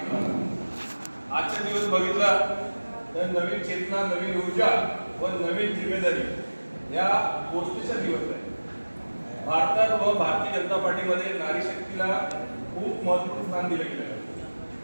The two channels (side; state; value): both; inverted; correlation -1.00